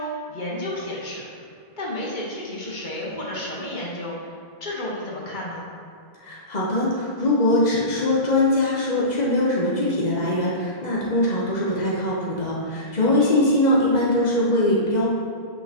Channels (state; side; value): late; right; 2.0 ms